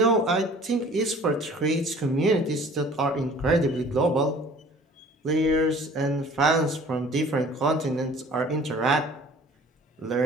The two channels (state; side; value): normal; both; correlation 0.49